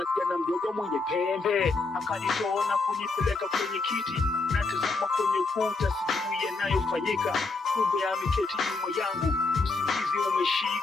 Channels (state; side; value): quieter; right; 3.8 dB